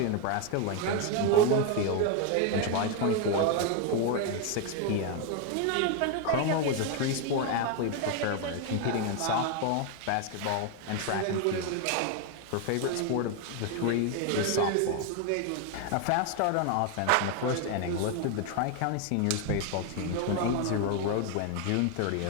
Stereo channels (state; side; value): different; both; correlation 0.01